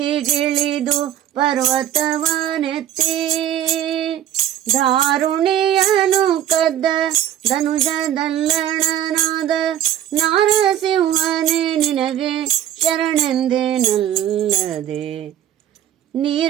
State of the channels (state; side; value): quieter; left; 11.0 dB